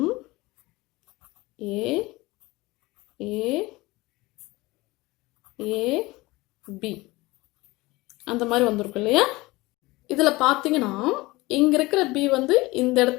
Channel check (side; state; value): right; quieter; 21.2 dB